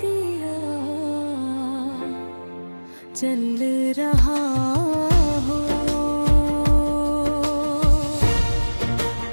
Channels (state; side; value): inverted; both; correlation -1.00